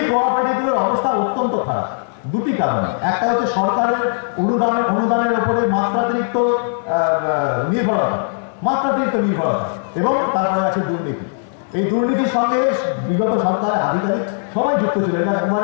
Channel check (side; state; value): right; silent; digital silence